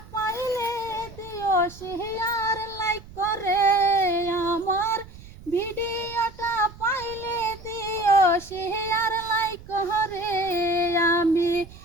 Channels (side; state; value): right; noise; rumble, 18 dB below the sound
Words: পাইলে দিও শেয়ার লাইক করে আমার ভিডিওটা পাইলে দিও শেয়ার লাইক করে আমি